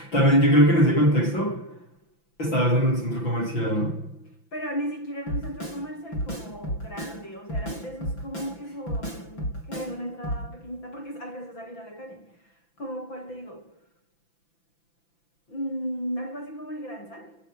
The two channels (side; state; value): right; late; 5.9 ms